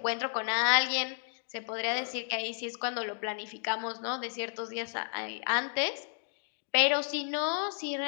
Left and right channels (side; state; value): right; silent; digital silence